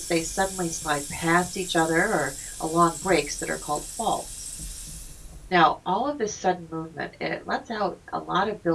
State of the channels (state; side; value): identical; both; correlation 1.00